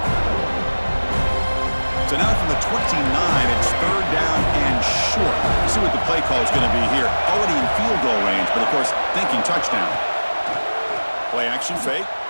So now from the 29, it's 3rd down and short. You see what the play call is going to be here. Already in field goal range, but of course, thinking touchdown. Play action fake.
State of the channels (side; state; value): both; inverted; correlation -1.00